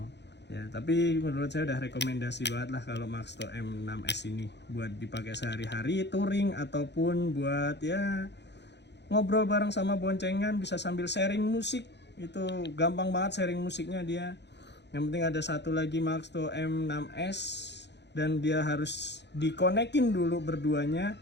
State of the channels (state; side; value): late; right; 0.50 ms